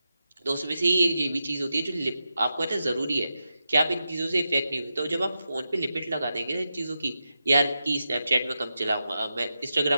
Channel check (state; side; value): inverted; both; correlation -0.89